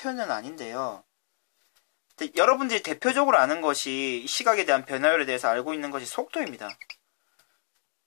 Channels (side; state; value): right; silent; 59 dB below the other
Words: 아닌데요. 근데 여러분들이 대표적으로 아는 것이 시각에 대한 변화율에 대해서 알고 있는 것이 속도입니다.